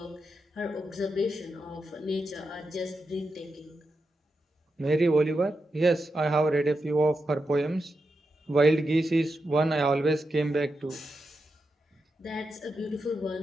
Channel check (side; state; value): both; normal; correlation 0.87